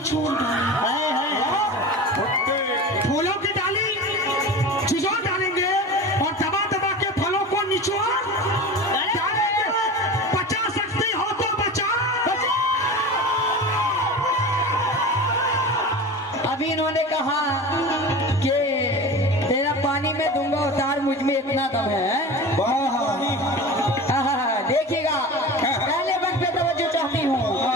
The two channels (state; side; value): normal; both; correlation 0.32